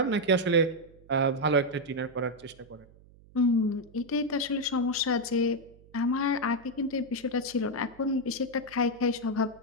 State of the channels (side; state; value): right; noise; hum, 25 dB below the sound